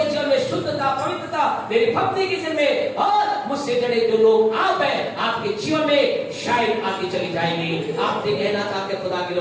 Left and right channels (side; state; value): both; identical; correlation 1.00